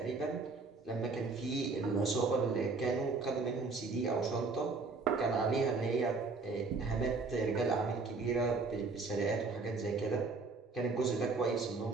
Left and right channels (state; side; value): quieter; left; 4.1 dB